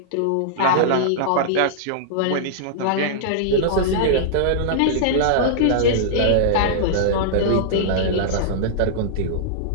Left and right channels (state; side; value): different; both; correlation -0.02